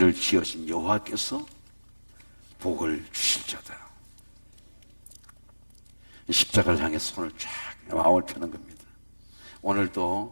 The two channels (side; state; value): both; inverted; correlation -1.00